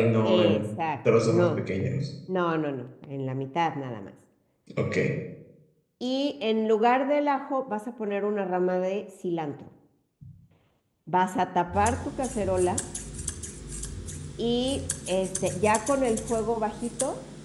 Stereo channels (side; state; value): both; identical; correlation 1.00